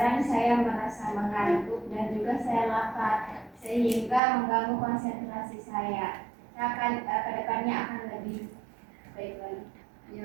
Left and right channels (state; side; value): drops out; left; at 4.2 s